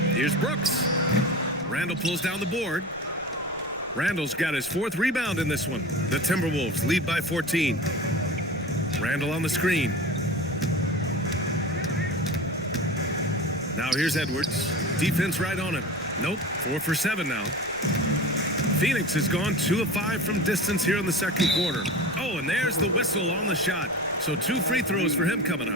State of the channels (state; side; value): noise; left; rumble, 23 dB below the sound